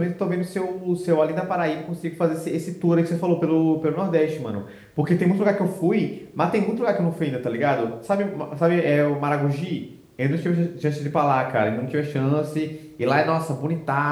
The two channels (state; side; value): identical; both; correlation 1.00